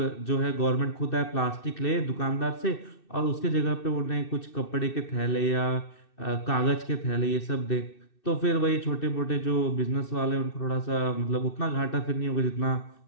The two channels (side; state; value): right; late; 2.6 ms